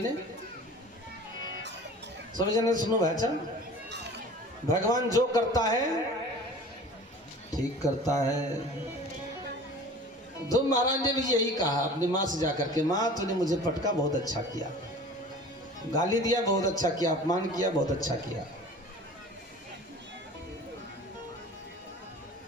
सभी जने सुनो भाई। अच्छा, भगवान जो करता है ठीक करता है। ध्रुव महाराज ने भी यही कहा अपनी माँ से जाकर के, माँ तूने मुझे पटका, बहुत अच्छा किया, गाली दिया, बहुत अच्छा किया, अपमान किया, बहुत अच्छा किया।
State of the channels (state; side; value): normal; both; correlation 0.42